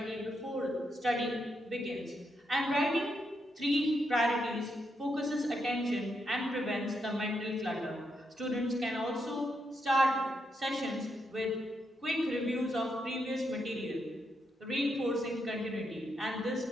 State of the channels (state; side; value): normal; both; correlation 0.81